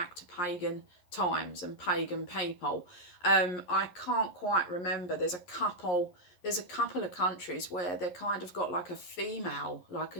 to pagan times and pagan people. I can't quite remember. There's a couple of countries where they kind of got like a female, like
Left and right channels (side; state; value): right; late; 11 ms